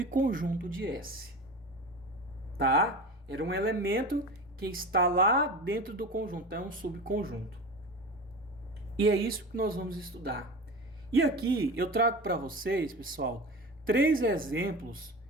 de S. Tá? Era um elemento que está lá dentro do conjunto, é um subconjunto. E é isso que nós vamos estudar. E aqui eu trago para vocês, pessoal, 3 exemplos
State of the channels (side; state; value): both; normal; correlation 0.31